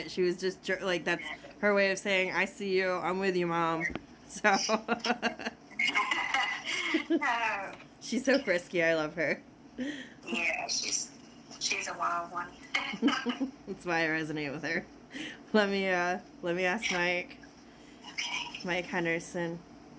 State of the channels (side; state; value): both; identical; correlation 1.00